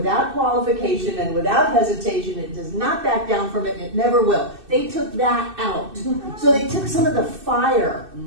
qualification and without hesitation. It does not back down from it, and it never will. They took that out. So they took some of the fire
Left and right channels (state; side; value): late; left; 2.6 ms